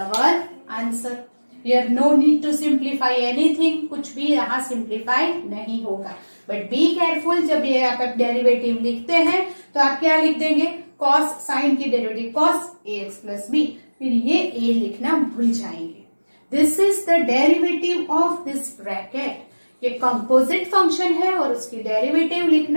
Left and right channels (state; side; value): inverted; both; correlation -1.00